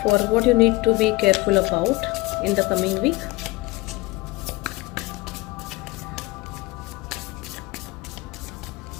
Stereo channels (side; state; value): right; quieter; 21.6 dB